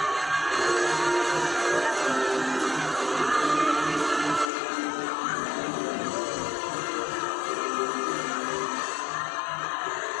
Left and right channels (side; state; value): right; drops out; at 4.5 s